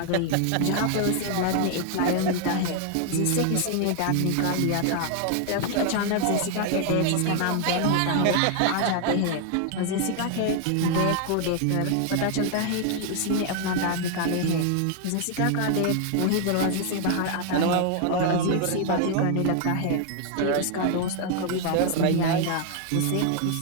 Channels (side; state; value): both; different; correlation 0.00